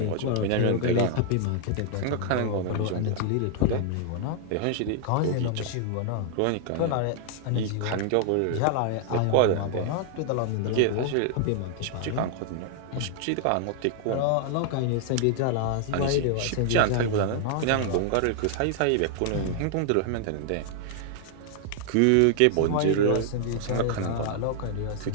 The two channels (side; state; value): both; different; correlation 0.00